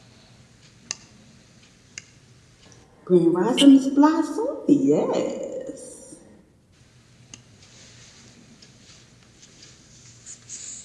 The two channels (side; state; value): both; identical; correlation 1.00